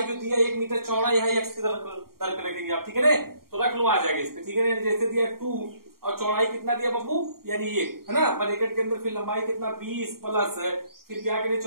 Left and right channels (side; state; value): left; late; 0.93 ms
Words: जो दिया 1 मीटर चौड़ाई है, x की तरफ रखेंगे आप, ठीक है ना। तो रख लो, आ जाएगा इस पे, ठीक है ना। जैसे दिया 2 और चौड़ाई कितना दिया बाबू, यानी 1 है ना, ब्रैकेट के अंदर फिर लंबाई कितना 20 प्लस फिर क्या करें